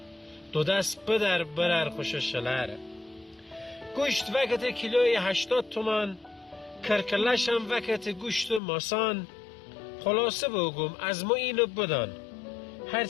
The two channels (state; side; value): drops out; right; at 8.6 s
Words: دو دست بدر برر خوش شلره. گوشت وقت کیلوی 80 تومان، کرکلشم وقت گوشت ماسان، خلاصه بگم از ما اینو بدان،